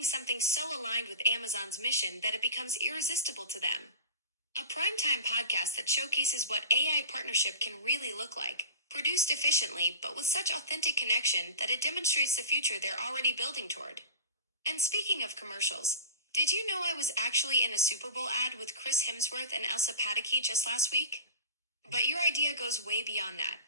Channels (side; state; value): both; inverted; correlation -0.31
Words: something so aligned with Amazon's mission that it becomes irresistible to them. A primetime podcast that showcases what AI partnership can really look like, produced efficiently but with such authentic connection that it demonstrates the future they're already building toward. And speaking of commercials, did you know I was actually in a Super Bowl ad with Chris Hemsworth and Elsa Pataky just last week? But your idea goes way beyond that.